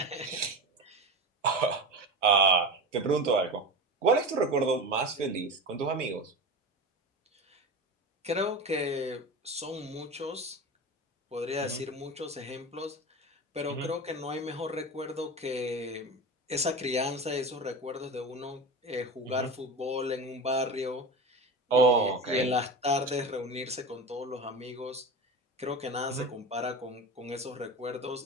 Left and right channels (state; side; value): normal; both; correlation 0.27